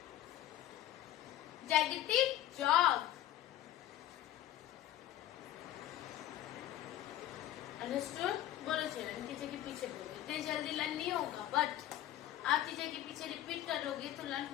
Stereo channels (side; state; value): right; quieter; 13.0 dB